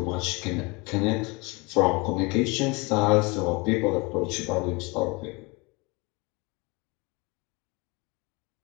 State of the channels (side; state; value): right; quieter; 27.0 dB